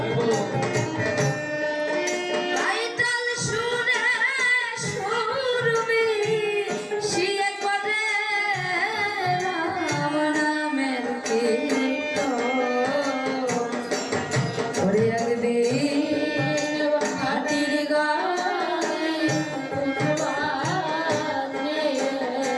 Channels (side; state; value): both; identical; correlation 1.00